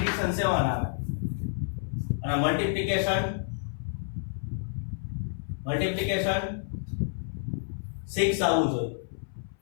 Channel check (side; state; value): right; silent; 56 dB below the other